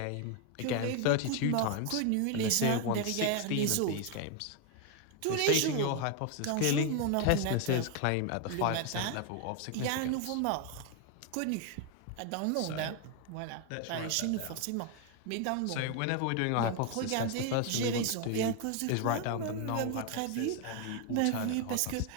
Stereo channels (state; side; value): different; both; correlation 0.01